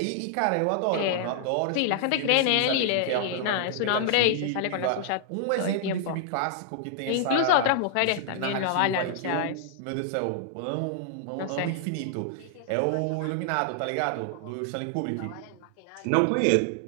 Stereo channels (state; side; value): different; both; correlation -0.01